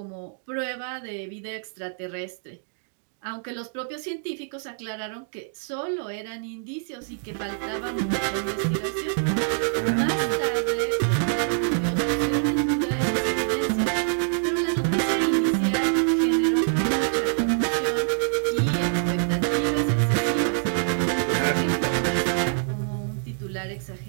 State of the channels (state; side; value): silent; left; digital silence